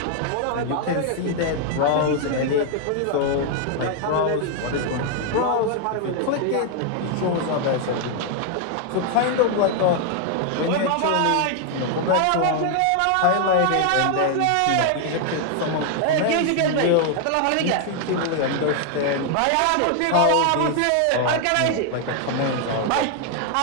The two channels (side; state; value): both; different; correlation 0.00